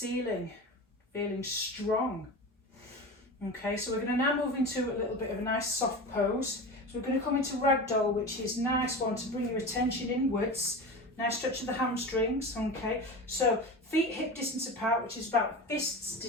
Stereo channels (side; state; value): both; normal; correlation 0.29